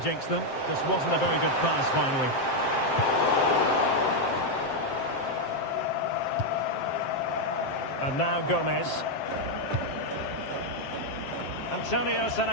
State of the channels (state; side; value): late; right; 7.6 ms